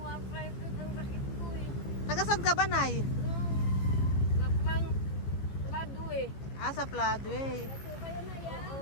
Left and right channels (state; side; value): late; right; 14 ms